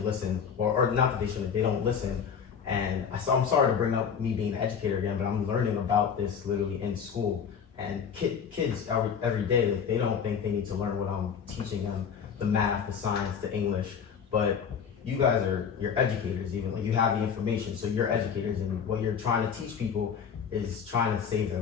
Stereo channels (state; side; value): quieter; right; 7.1 dB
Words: listen, or not that they shouldn't, they don't listen. And I'm sorry to bring up me being an educator again, but I'm learning about this literally in school. And kids every day, like, they don't think they need to learn what I'm teaching them, the math, the science, the English. But you guys you're educators, even like you have the information, so you're educators, and what you're trying to teach people is trying to save their